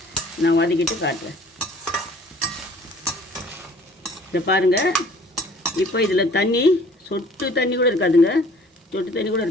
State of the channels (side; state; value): both; normal; correlation 0.53